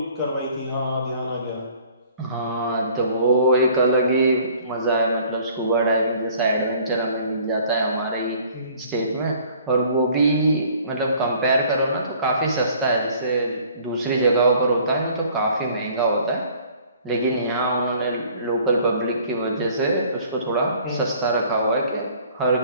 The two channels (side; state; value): both; inverted; correlation -0.54